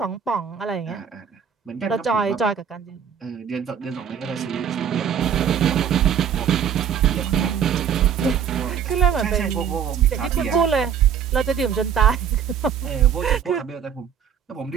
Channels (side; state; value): left; quieter; 8.0 dB